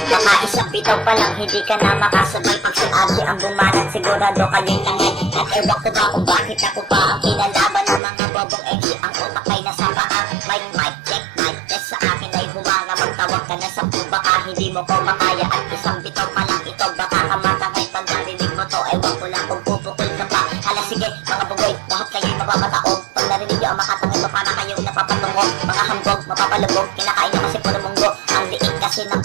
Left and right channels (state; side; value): drops out; left; at 8.0 s